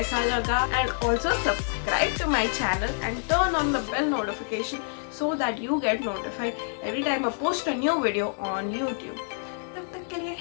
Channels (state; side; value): silent; right; 60 dB below the other